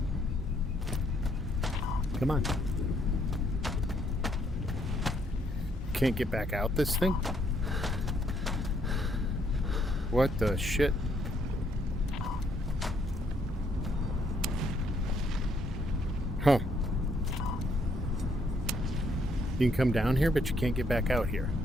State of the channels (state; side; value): normal; both; correlation 0.70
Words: Come on. Can't get back out this thing? What the shit? Huh. You can come down here, but you can't get back out here.